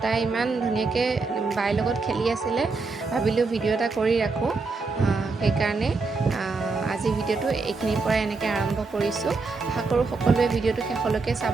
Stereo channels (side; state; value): left; quieter; 4.1 dB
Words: তাই ইমান ধুনীয়াকৈ বাইৰ লগত খেলি আছিলে। ভাবিলোঁ ভিডিঅ' এটা কৰি ৰাখোঁ, সেইকাৰণে আজি ভিডিঅ'টো এইখিনিৰ পৰা এনেকৈ আৰম্ভ কৰিছোঁ। আশা কৰোঁ সকলোৱে ভিডিঅ'টো শেষলৈকে